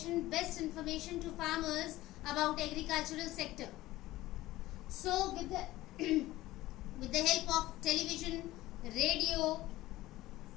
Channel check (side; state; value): right; quieter; 17.0 dB